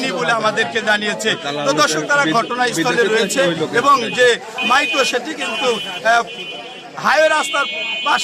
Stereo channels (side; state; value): both; identical; correlation 1.00